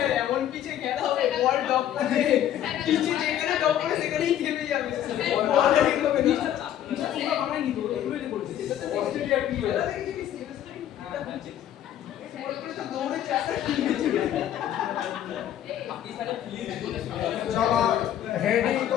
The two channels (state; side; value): quieter; right; 11.1 dB